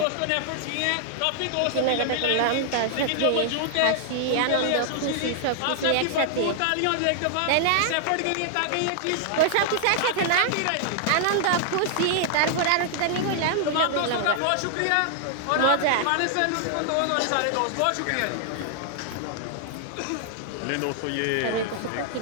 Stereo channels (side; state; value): both; different; correlation 0.00